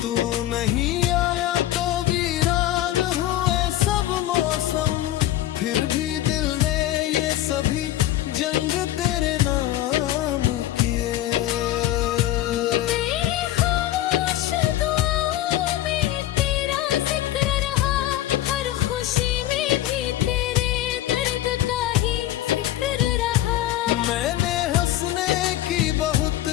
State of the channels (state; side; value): quieter; right; 14.0 dB